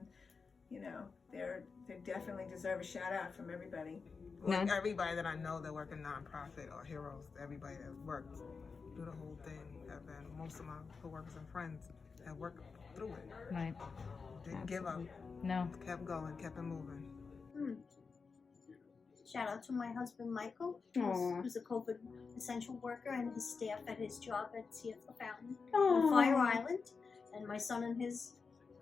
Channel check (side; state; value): right; quieter; 5.0 dB